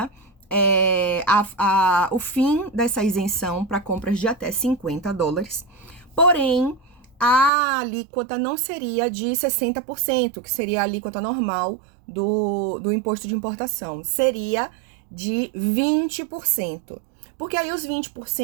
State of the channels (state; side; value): drops out; left; at 7.5 s